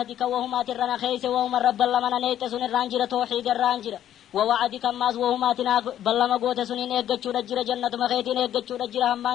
وهما ترنا خيس وهما رب اللمنا نيت سن الرانجرة توحيد الرانجرة ووعدك ماز وهما تنا بلما قوت سنين إيقاتشو رجرة جنة مخيتين إيقاتشو رجرة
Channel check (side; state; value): right; quieter; 11.2 dB